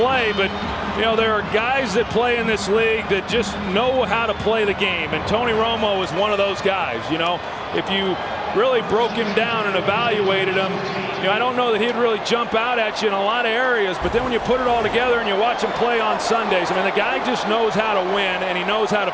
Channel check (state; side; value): identical; both; correlation 1.00